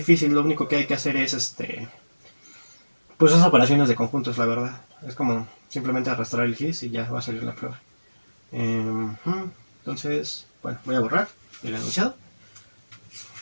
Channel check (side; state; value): both; inverted; correlation -1.00